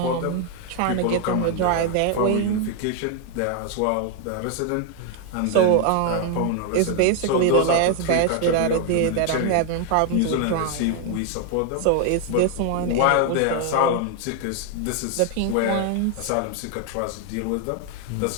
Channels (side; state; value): both; different; correlation 0.00